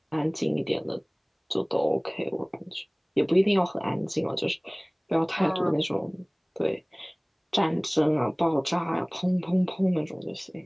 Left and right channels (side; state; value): both; identical; correlation 1.00